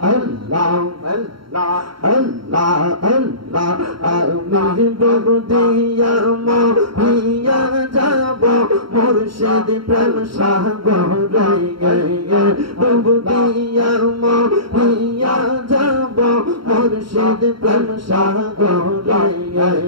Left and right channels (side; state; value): left; late; 0.74 ms